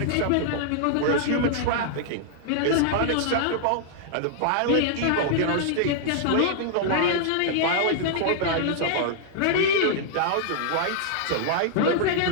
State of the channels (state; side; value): different; both; correlation -0.01